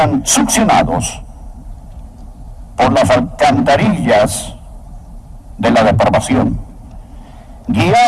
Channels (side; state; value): both; identical; correlation 1.00